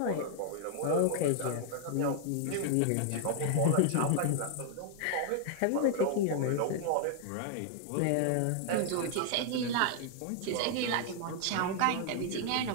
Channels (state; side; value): different; both; correlation 0.00